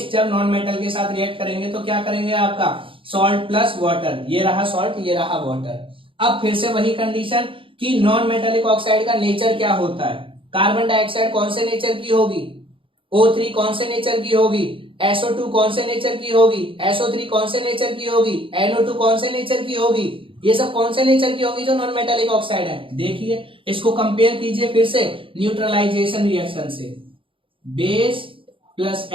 जब नॉन मेटल के साथ रिएक्ट करेंगे तो क्या करेंगे आपका, सॉल्ट प्लस वाटर। ये रहा सॉल्ट, ये रहा वाटर। अब फिर से वही कंडीशन कि नॉन मेटालिक ऑक्साइड का नेचर क्या होता है। कार्बन डाइऑक्साइड कौन से नेचर की होगी, O3 कौन से नेचर की होगी, SO2 कौन से नेचर की होगी, SO3 कौन से नेचर की होगी, NO2 कौन से नेचर की होगी। ये सब कौन से नेचर की होगी जो नॉन मेटालिक ऑक्साइड है। देखिए इसको कंपेयर कीजिए फिर से न्यूट्रलाइजेशन रिएक्शन से, base plus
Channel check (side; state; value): left; late; 0.25 ms